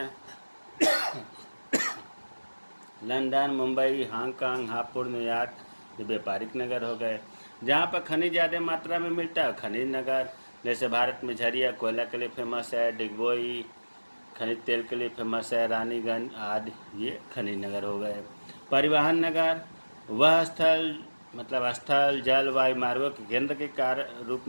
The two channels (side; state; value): both; inverted; correlation -1.00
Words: London, Mumbai, Hong Kong, Hapur, New York, ये व्यापारिक नगर हो गए। जहाँ पर खनिज ज़्यादा मात्रा में मिलता है खनिज नगर, जैसे भारत में झरिया कोयला के लिए फेमस है, डिगबोई खनिज तेल के लिए फेमस है, रानीगंज आदि, ये खनिज नगर हो गए। परिवहन नगर, वह स्थल मतलब स्थल, जल, वायु मार्गों के केंद्र के रूप